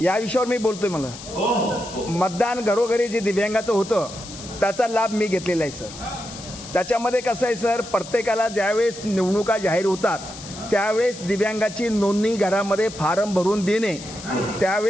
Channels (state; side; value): noise; left; hiss, 14 dB below the sound